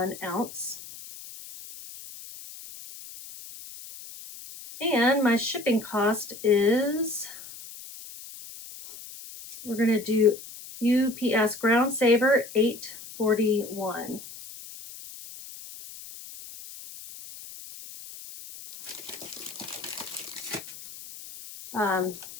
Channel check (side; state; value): left; noise; hiss, 15 dB below the sound